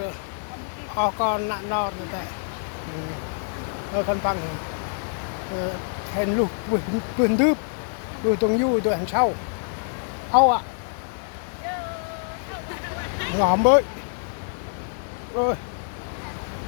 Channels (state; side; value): silent; right; digital silence